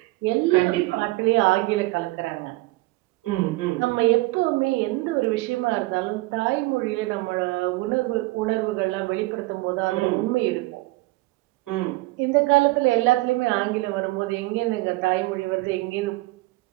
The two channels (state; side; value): quieter; left; 21.2 dB